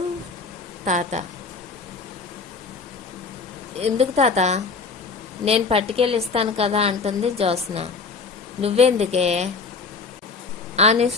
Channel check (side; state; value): right; quieter; 4.5 dB